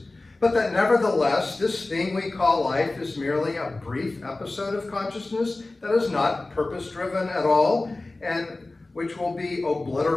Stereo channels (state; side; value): quieter; right; 3.1 dB